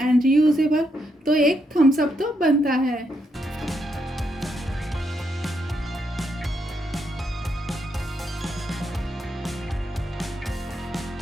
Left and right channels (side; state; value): both; normal; correlation 0.79